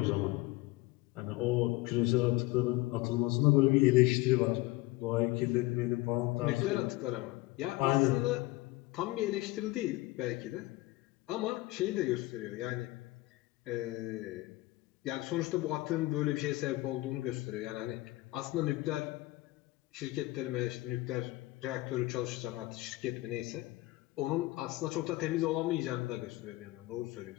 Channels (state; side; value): quieter; right; 20.0 dB